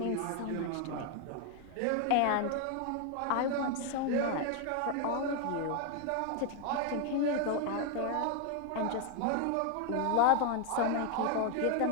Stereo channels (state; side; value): different; both; correlation 0.01